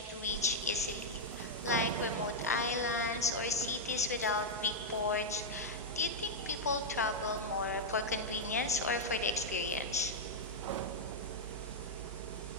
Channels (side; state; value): both; normal; correlation -0.03